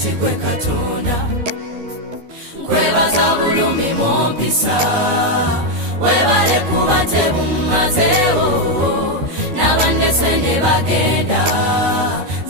gwe Katonda. Kwebaza bulumi bwompisa, webale kuba tebumazeewo, n'abandese ne bagenda,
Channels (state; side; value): late; left; 13 ms